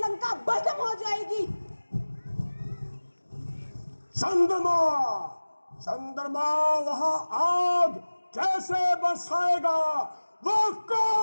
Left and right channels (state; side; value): inverted; both; correlation -1.00